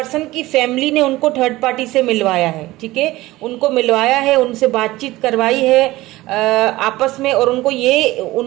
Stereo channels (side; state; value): left; quieter; 18.2 dB